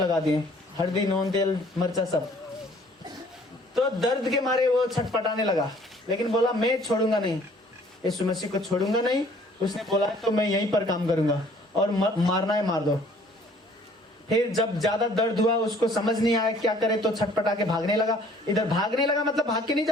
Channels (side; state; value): both; normal; correlation 0.57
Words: दिए, हल्दी, नून, तेल, मिर्चा सब। तो दर्द के मारे वो छटपटाने लगा, लेकिन बोला मैं छोड़ूंगा नहीं, यीशु मसीह को छोड़ूंगा नहीं। उसने बोला तो मैं यहीं पर काम करूंगा और मारना है मार दो। फिर जब ज्यादा दर्द हुआ, उसको समझ नहीं आया क्या करे, तो छटपटा के भागने लगा। इधर भागने लगा मतलब भाग के नहीं